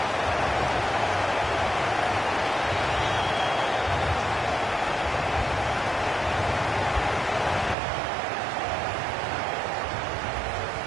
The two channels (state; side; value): drops out; left; at 7.8 s